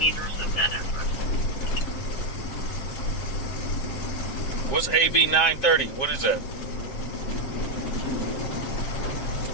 of that effort. What's AB 930? What is that?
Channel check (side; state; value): right; late; 7.6 ms